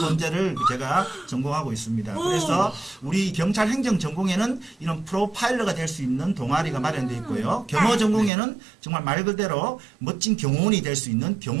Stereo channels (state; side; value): drops out; left; at 8.3 s